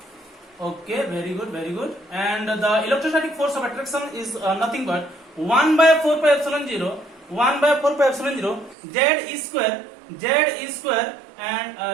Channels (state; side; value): drops out; left; at 8.8 s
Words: Okay, very good. And the electrostatic force of attraction is nothing but 1 by 4 pi epsilon 0 z is square and